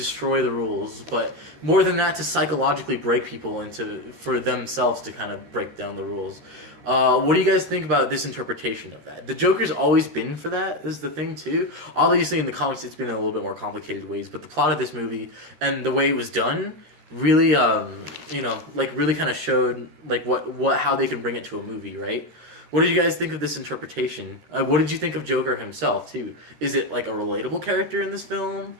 the rules, but more than that, to psychologically break people for themselves to kind of break down the rules. What do you guys think about this interpretation of that? The Joker's always been for that, is the thing, too. Obviously, in the comics, it's been in a little bit more complicated ways, but the plot of this movie and the way it was done really, really kind of showed, how they can bring it to a movie, right? What did you guys think of this interpretation? What did you think of Joker himself, too? Is it, a relatable character in this film?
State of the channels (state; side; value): late; left; 13 ms